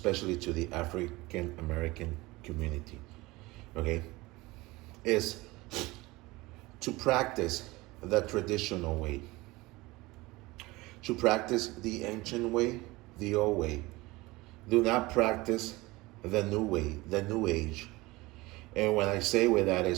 to the African American community, okay, is to practice the traditional way, to practice the ancient way, the old way. Do not practice the new way, the new age. And when I say with that,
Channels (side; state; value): left; quieter; 21.3 dB